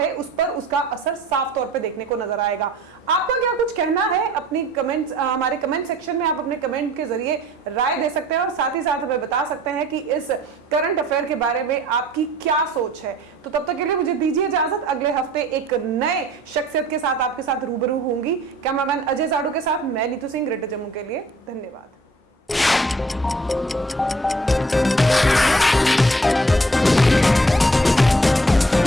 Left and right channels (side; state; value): both; normal; correlation 0.55